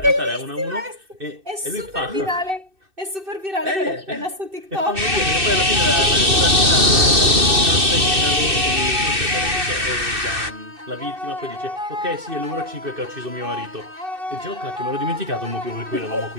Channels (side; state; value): left; late; 2.6 ms